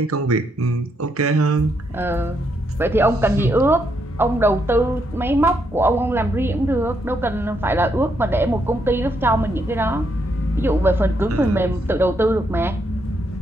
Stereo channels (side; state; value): both; normal; correlation 0.77